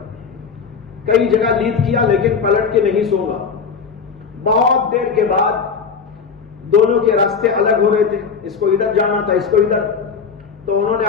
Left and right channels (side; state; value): right; quieter; 5.8 dB